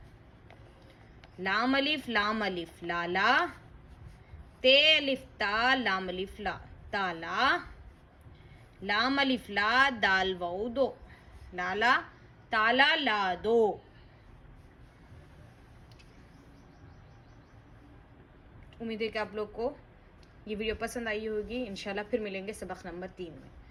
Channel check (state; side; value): identical; both; correlation 1.00